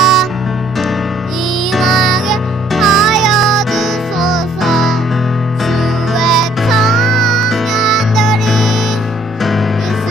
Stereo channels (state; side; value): normal; both; correlation 0.63